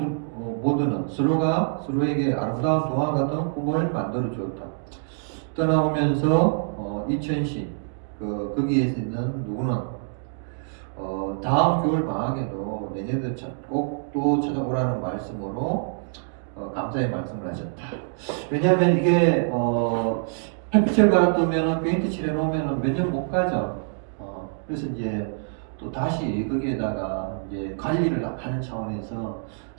서로가 서로에게 아름다운 동화 같은 꿈을 만들어 주었다. 떠나오면서 이천시 거기에서 있는 누구는 다음 겨울 방학에도 내년도 꼭 또 찾아오라는 말씀으로 감사의 말씀을 하셨다. 왜냐하면 이게 햇빛을 받았으면 페인트 칠해 놓으면 몇 년 못 가죠. 그래서 이제 또 다시 거기에다가 이제 관리를 하는 차원에서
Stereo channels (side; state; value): left; silent; digital silence